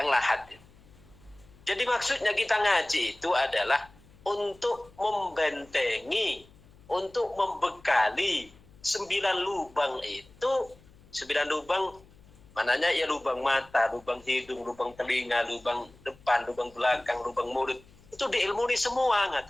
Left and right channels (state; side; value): noise; left; hum, 25 dB below the sound